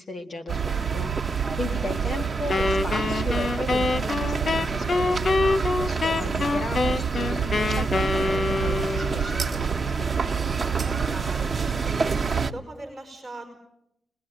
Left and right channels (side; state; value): both; normal; correlation 0.81